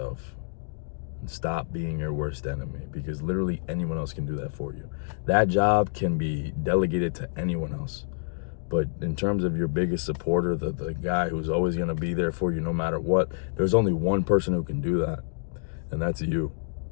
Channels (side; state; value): right; silent; digital silence